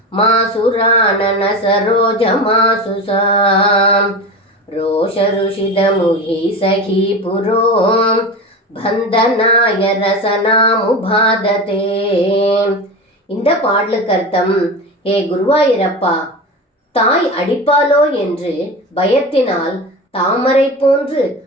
மாசுராணன சரோஜ மாசுசாம் ரோஷ ருஷித முகி சகி புரோம் பந்தனாய ரசனாமுபாததே. இந்த பாடலுக்கு அர்த்தம், ஏ குருவாயூரப்பா, தாய் அடிப்பாளோ என்று பயத்தினால் தாமரை போன்று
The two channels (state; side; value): normal; both; correlation 0.27